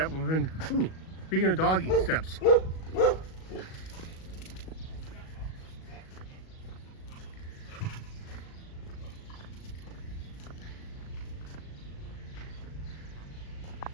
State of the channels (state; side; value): late; right; 37 ms